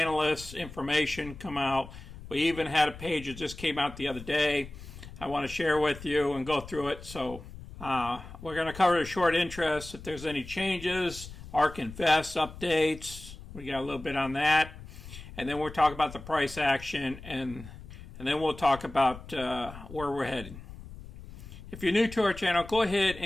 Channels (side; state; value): left; noise; rumble, 15 dB below the sound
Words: information come out. We even had a page that just came out the other day. I want to share with you and go through it. So we're going to cover the short interest, if there's any changes, ARK Invest updates. We got a little bit on that. And then we'll talk about the price action, and then we'll talk about where we're heading. If you're new to our channel, go ahead